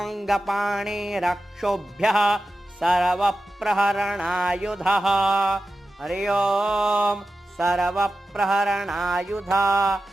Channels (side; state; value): both; normal; correlation 0.92